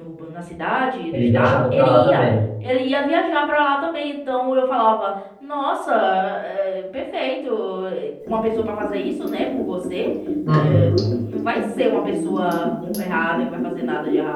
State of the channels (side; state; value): both; identical; correlation 1.00